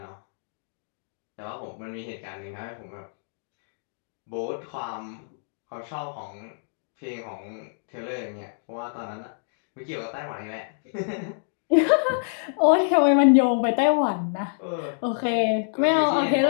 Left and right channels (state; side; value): silent; right; digital silence